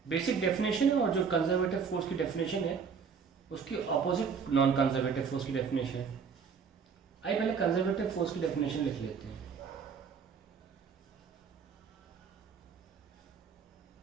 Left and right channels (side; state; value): left; quieter; 6.1 dB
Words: Basic definition है और जो कंजर्वेटिव फोर्स की डेफिनेशन है उसकी ऑपोजिट नॉन कंजर्वेटिव फोर्स की डेफिनेशन है. आइए पहले कंजर्वेटिव फोर्स की डेफिनेशन लिख लेते हैं.